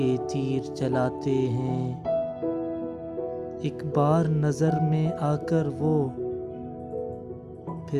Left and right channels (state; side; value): identical; both; correlation 1.00